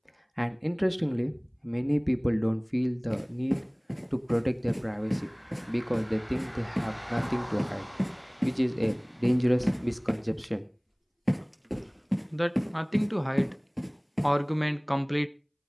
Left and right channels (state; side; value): identical; both; correlation 1.00